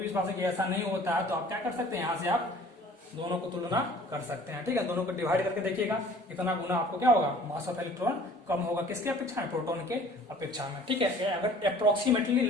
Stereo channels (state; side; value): normal; both; correlation 0.50